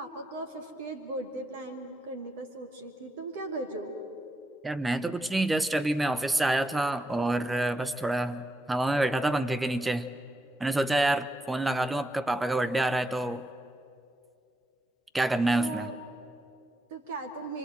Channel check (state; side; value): normal; both; correlation 0.85